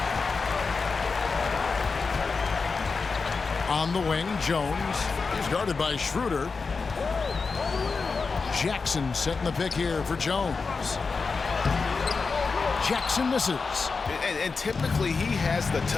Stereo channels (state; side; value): quieter; right; 4.6 dB